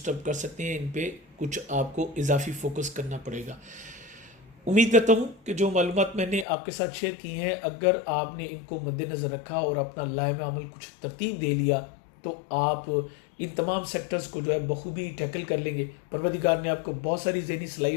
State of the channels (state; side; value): drops out; right; at 6.5 s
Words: कर सकते हैं, इन पे कुछ आपको इजाफी फोकस करना पड़ेगा। उम्मीद करता हूँ कि जो मालूमात मैंने आपके साथ शेयर की हैं, अगर आपने इनको मद्देनज़र रखा और अपना लाइम अमल कुछ तरतीब दे लिया तो आप इन तमाम सेक्टर्स को जो है बखूबी टैकल कर लेंगे। परवरदिगार ने आपको बहुत सारी ज़हनी